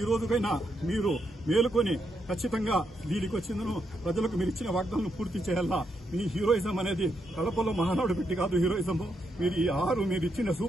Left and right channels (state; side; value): normal; both; correlation 0.80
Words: ఈ రోజుకైనా మీరు మేలుకొని ఖచ్చితంగా దీనికి వచ్చిందను ప్రజలకు మీరు ఇచ్చిన వాగ్దానం పూర్తి చేయాలా. మీ హీరోయిజం అనేది కడపలో మహానాడు పెట్టి కాదు హీరోయిజము. మీరు ఈ మీరు ఇచ్చిన